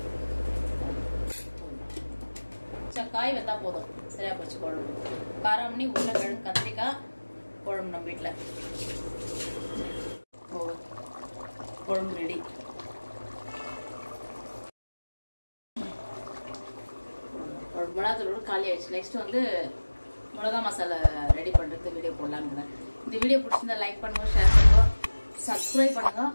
காய் வெந்தா போதும். சரியா போச்சு குழம்பு. காராமணி உருளைக்கிழங்கு கத்திரிக்காய் குழம்பு நம்ம வீட்டில் குழம்பு ரெடி. மிளகாத்தூளோட காலி ஆயிடுச்சு. நெக்ஸ்ட் வந்து மிளகா மசாலா ரெடி பண்றதுக்கு வீடியோ போடலான்னு. இந்த வீடியோ பிடிச்சிருந்தா லைக் பண்ணுங்க, ஷேர் பண்ணுங்க, சப்ஸ்கிரைப் பண்ணுங்க.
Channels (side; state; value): both; inverted; correlation -1.00